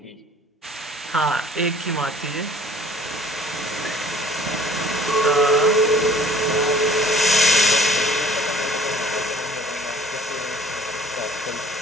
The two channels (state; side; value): normal; both; correlation 0.53